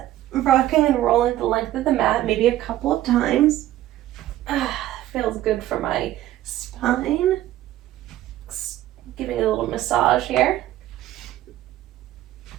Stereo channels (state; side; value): quieter; left; 14.0 dB